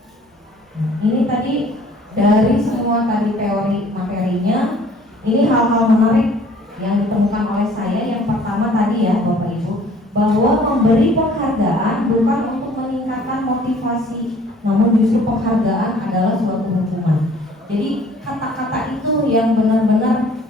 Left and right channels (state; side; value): normal; both; correlation 0.55